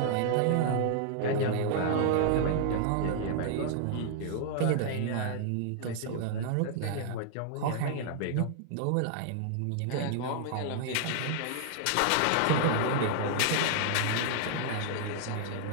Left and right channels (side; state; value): both; different; correlation 0.00